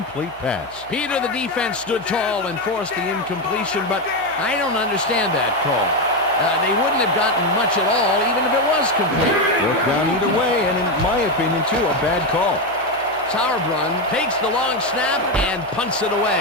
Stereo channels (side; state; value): left; noise; hum, 27 dB below the sound